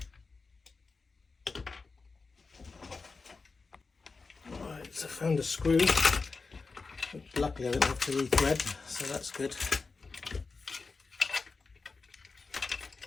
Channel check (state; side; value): quieter; right; 4.3 dB